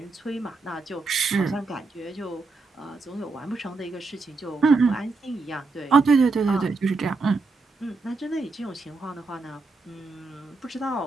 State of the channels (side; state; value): left; quieter; 3.9 dB